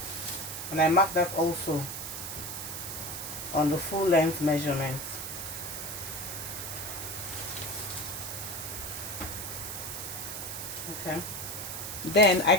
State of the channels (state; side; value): noise; right; hiss, 6 dB below the sound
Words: And I mark that also on the full length measurement. Okay. Then I